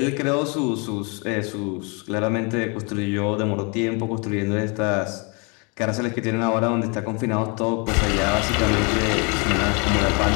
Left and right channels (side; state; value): right; quieter; 32.6 dB